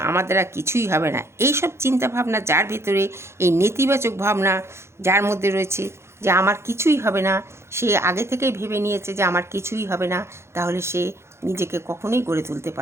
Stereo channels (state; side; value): late; left; 0.13 ms